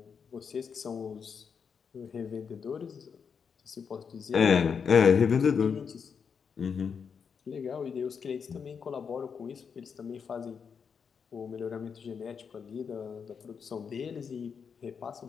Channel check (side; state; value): right; quieter; 6.4 dB